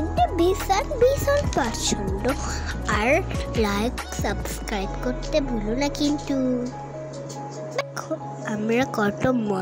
ভীষণ পছন্দ। আর লাইক সাবস্ক্রাইব করতে ভুলো না কিন্তু। দেখো আমরা কত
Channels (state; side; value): identical; both; correlation 1.00